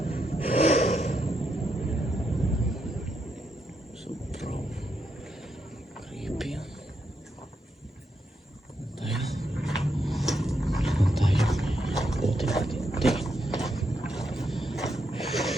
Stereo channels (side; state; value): both; normal; correlation 0.81